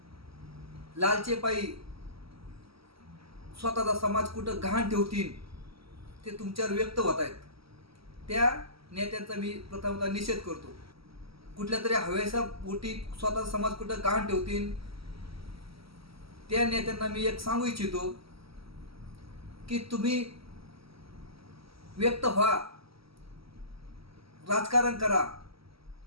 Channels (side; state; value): left; late; 0.75 ms